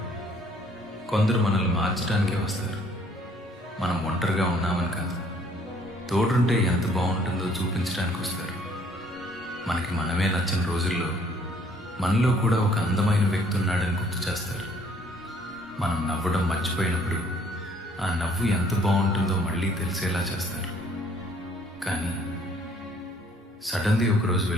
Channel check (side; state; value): both; normal; correlation 0.61